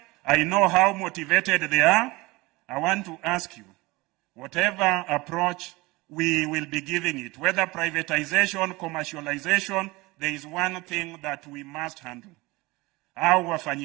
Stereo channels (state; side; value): quieter; left; 22.3 dB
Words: I know how motivated they are. I want to ask you, whatever approach we will be giving it, whether privatization, commercialization, there is one thing that we must handle. Our